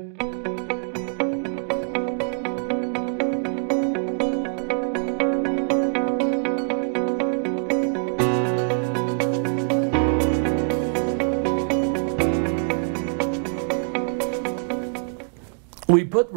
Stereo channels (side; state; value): left; silent; 62 dB below the other